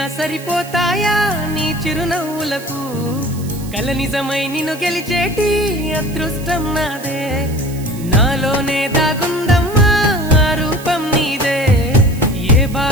సరిపోతాయా నీ చిరునవ్వులకు కల నిజమై నిన్ను గెలిచేటి అదృష్టం నాదే నాలోనే దాగుందమ్మా ఆ రూపం నీదే ఏ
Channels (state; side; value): noise; right; hiss, 17 dB below the sound